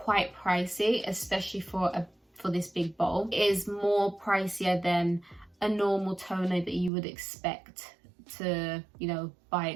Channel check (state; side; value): drops out; left; at 6.9 s